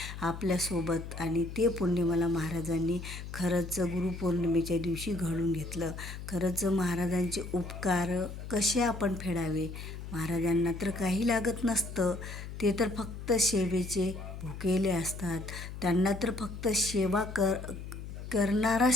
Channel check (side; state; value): left; noise; hum, 9 dB below the sound